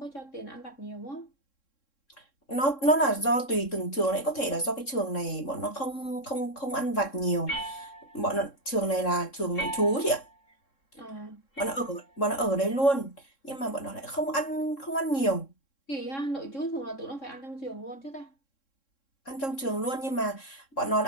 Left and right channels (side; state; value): right; late; 3.7 ms